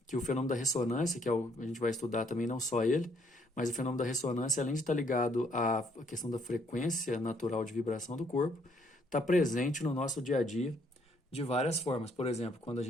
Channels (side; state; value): both; normal; correlation 0.68